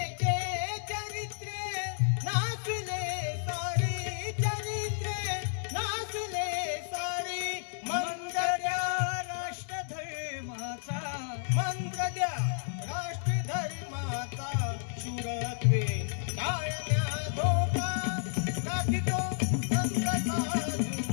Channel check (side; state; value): right; silent; 57 dB below the other